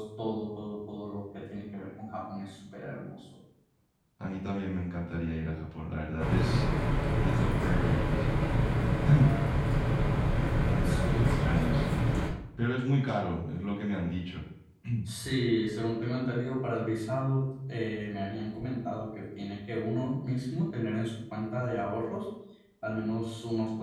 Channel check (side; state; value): both; identical; correlation 1.00